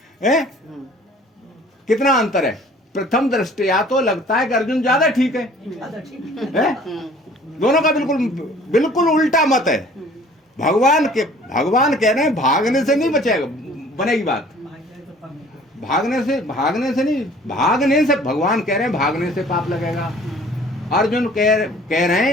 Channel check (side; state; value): both; normal; correlation 0.52